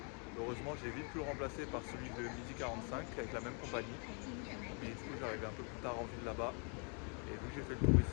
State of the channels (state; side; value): quieter; right; 37.6 dB